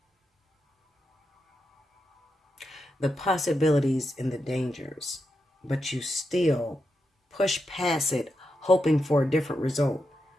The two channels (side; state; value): both; normal; correlation 0.87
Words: the possibilities and the dangers, but you still push past it, hoping for a different result,